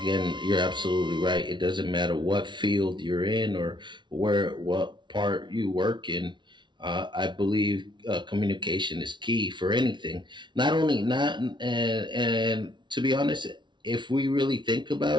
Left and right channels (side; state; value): left; late; 0.23 ms